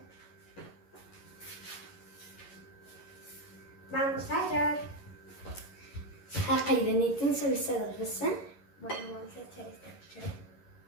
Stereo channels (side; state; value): right; late; 11 ms